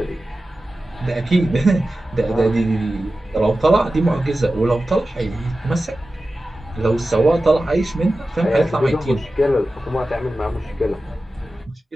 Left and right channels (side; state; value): both; normal; correlation 0.94